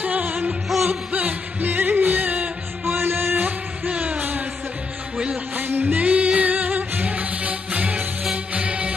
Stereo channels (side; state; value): right; quieter; 4.2 dB